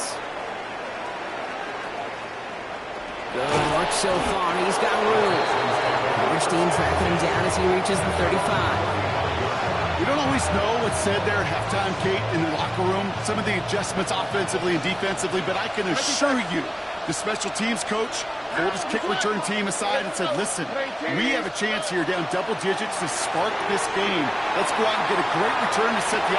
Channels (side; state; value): both; identical; correlation 1.00